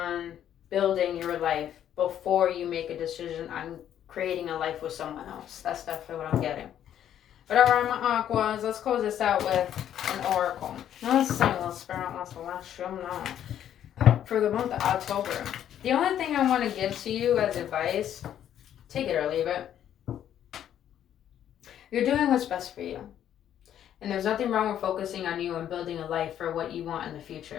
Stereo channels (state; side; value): quieter; right; 10.4 dB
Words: building your life before you make a decision on creating a life with someone else. That's definitely what I'm getting. But alright, my Aquas, let's close this out with an oracle. Now let's sing a little spirit. Let's let you know. For the month of October, the only thing I want to give to you as advice, take it or leave it. You're doing what's best for you. And there's nothing wrong with focusing on you and building a life for what you want in the